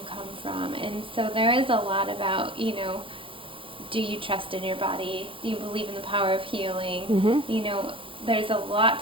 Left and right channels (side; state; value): left; late; 0.25 ms